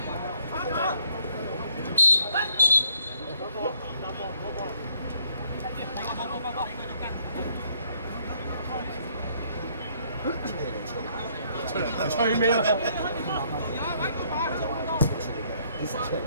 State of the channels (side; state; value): both; inverted; correlation -0.67